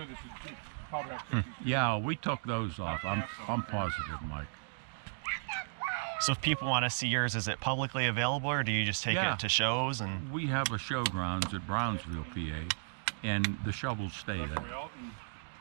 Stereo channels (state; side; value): silent; left; digital silence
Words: this is probably Yeah, we took those off. I'm positive, Mike. So if people want to see yours, is it publicly available, or do you just take Yeah. it to shows? And We have a showgrounds at Brownsville, PA, and the shovels stay there.